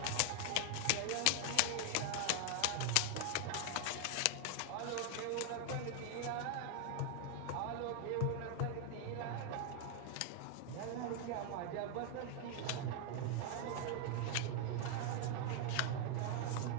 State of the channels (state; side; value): different; both; correlation 0.00